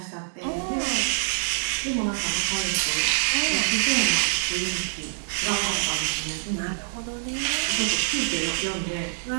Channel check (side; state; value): left; silent; digital silence